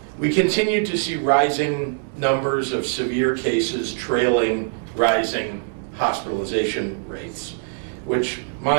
We continue to see rising numbers of severe cases trailing rising hospitalization rates, which,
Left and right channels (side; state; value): left; silent; digital silence